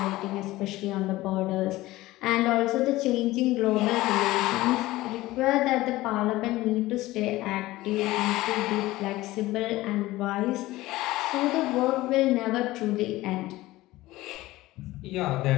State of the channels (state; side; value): quieter; right; 17.8 dB